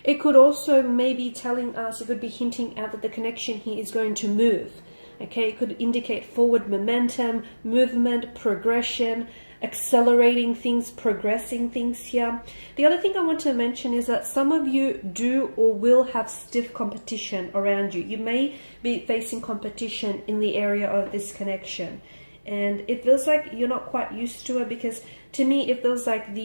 It could also maybe telling us, it could be hinting out that the connection here is going to move. Okay, it could indicate forward momentum, movement, progression, accelerating things, progressing things here. The other thing I want to mention is that some of you do or will have stiff competition around you. You may be facing competition in the area of this connection. And it feels like you're not quite used to it, because to me it feels like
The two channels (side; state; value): both; inverted; correlation -1.00